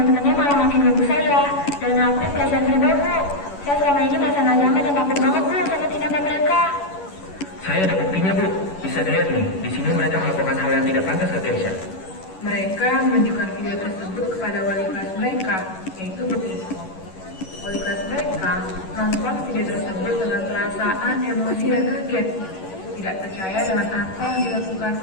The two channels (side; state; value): right; late; 11 ms